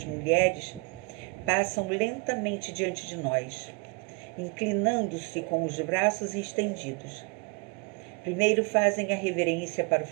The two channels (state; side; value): quieter; left; 30.9 dB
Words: mulheres, passam lentamente diante de nós, inclinando-se com os braços estendidos. Primeiro fazem a reverência para o